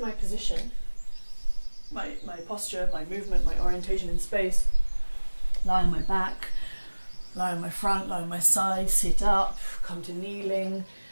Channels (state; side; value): inverted; both; correlation -1.00